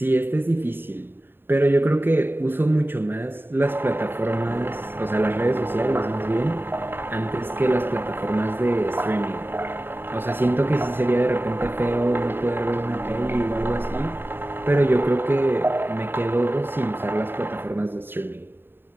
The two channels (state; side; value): late; left; 0.10 ms